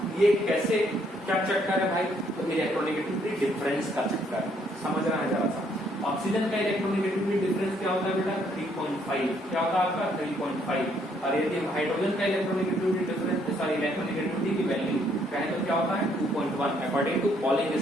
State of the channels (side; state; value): both; normal; correlation 0.68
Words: ये कैसे क्या चक्कर है भाई, तो इलेक्ट्रोनेगेटिविटी डिफरेंस का चक्कर समझना है जरा सा। ऑक्सीजन का इलेक्ट्रोनेगेटिविटी डिफरेंस क्या होता है बेटा 3.5, क्या होता है आपका 3.5। और यदि हाइड्रोजन का इलेक्ट्रोनेगेटिविटी डिफरेंस सॉरी इलेक्ट्रोनेगेटिविटी की वैल्यू कहें तो क्या होता है 2.1 अकॉर्डिंग टू पॉलिंग